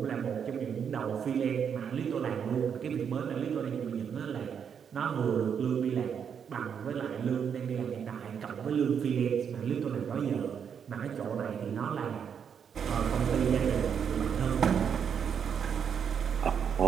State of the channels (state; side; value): quieter; left; 7.5 dB